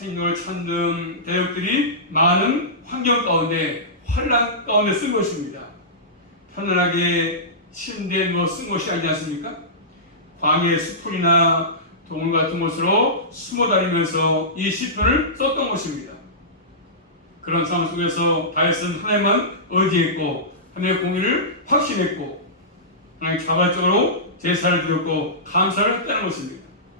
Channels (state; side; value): normal; both; correlation -0.18